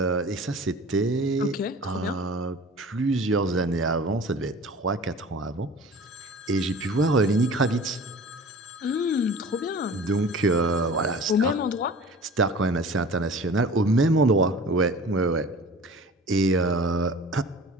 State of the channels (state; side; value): normal; both; correlation 0.42